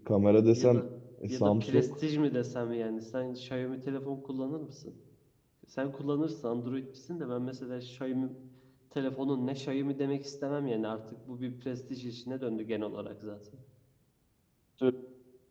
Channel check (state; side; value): identical; both; correlation 1.00